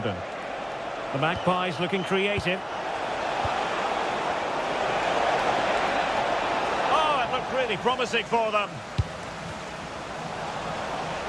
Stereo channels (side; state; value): both; identical; correlation 1.00